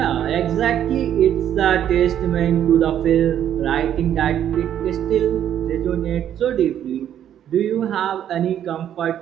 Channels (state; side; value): quieter; left; 10.2 dB